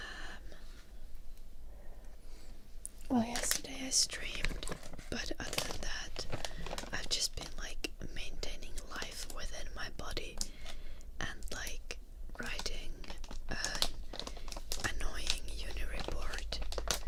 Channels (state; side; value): identical; both; correlation 1.00